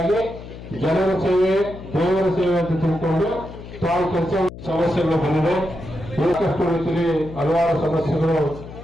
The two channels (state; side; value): noise; left; hum, 14 dB below the sound